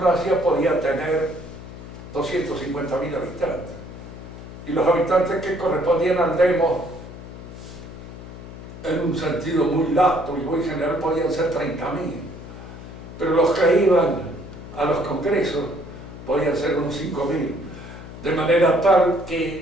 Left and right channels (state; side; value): noise; left; hum, 13 dB below the sound